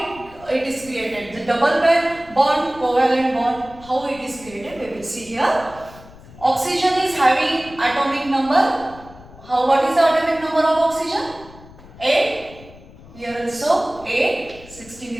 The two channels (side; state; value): left; noise; rumble, 20 dB below the sound